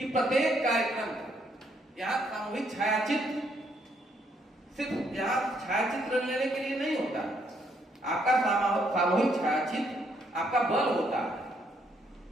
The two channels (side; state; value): both; normal; correlation 0.71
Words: प्रत्येक कार्यक्रम, यहाँ सामूहिक छायाचित्र सिर्फ यहाँ छायाचित्र लेने के लिए नहीं होता, आपका सामूहिक छायाचित्र आपका बल होता है।